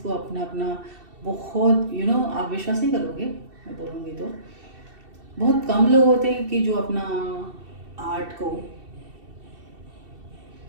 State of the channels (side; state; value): left; late; 2.7 ms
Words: को अपना अपना बहुत आप विश्वास नहीं करोगे, मैं बोलूँगी तो बहुत कम लोग होते हैं कि जो अपना आर्ट को